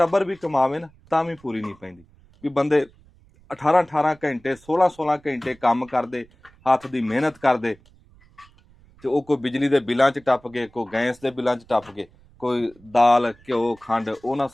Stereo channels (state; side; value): noise; right; rumble, 28 dB below the sound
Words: ਵੀ ਕਮਾਵੇ ਨਾ ਤਾਂ ਵੀ ਪੂਰੀ ਨਹੀਂ ਪੈਂਦੀ। ਵੀ ਬੰਦੇ 18 ਘੰਟੇ 16 ਘੰਟੇ ਕੰਮ ਕਰਦੇ, ਹੱਥ ਦੀ ਮਿਹਨਤ ਕਰਦੇ ਤੇ ਉਹ ਕੋਈ ਬਿਜਲੀ ਦੇ ਬਿੱਲਾਂ 'ਚ ਟੱਪ ਗਏ, ਕੋਈ ਗੈਸ ਦੇ ਬਿੱਲਾਂ 'ਚ ਟੱਪ ਗਏ, ਕੋਈ ਦਾਲ ਘਿਓ ਖੰਡ ਉਹਨਾਂ